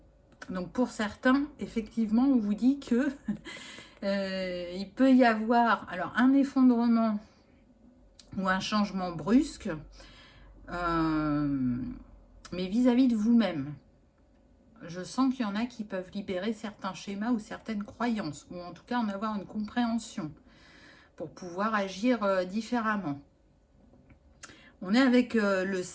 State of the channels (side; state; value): both; identical; correlation 1.00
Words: Donc pour certains, effectivement, on vous dit que il peut y avoir alors un effondrement ou un changement brusque, mais vis-à-vis de vous-même. Je sens qu'il y en a qui peuvent libérer certains schémas ou certaines croyances, ou en tout cas en avoir une compréhension pour pouvoir agir différemment. On est avec le